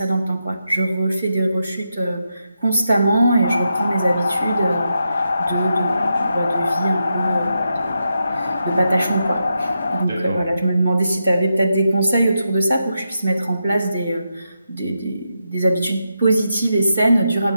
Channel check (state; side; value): inverted; both; correlation -0.85